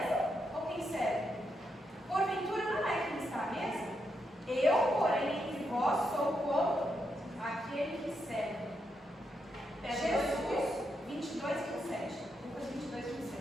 ou quem serve? Porventura não é quem está à mesa? Eu, porém, entre vós sou como aquele que serve. Jesus 22, 27. Lucas 22,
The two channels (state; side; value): normal; both; correlation 0.82